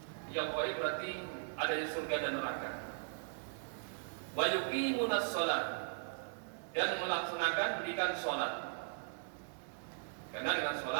Yang ghaib berarti ada di surga dan neraka. Wa yuqimunas shalah, dan melaksanakan pendidikan sholat. Karena dengan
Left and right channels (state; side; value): silent; left; digital silence